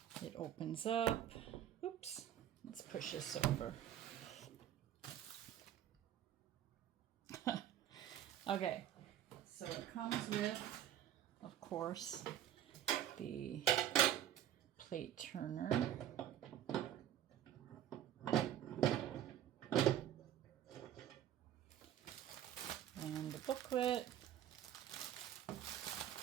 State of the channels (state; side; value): quieter; left; 11.1 dB